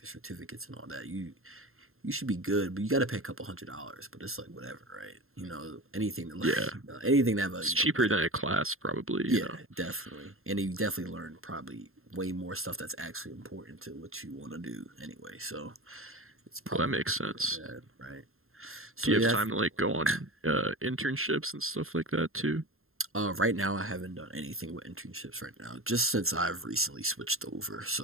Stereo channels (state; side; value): late; left; 0.61 ms